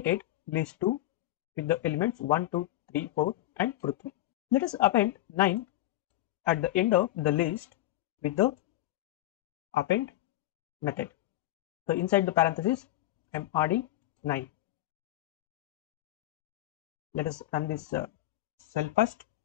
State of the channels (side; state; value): right; quieter; 15.5 dB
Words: list 2 with the elements 1, 2, 3, 4 and Prithvi. Let us append 9 at the end of the list with the append method. So inside the parenthesis I am adding 9. Let us run this cell first